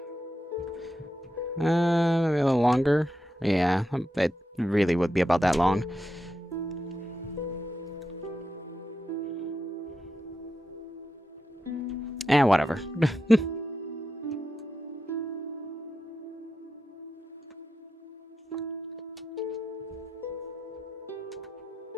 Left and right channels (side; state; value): both; normal; correlation 0.88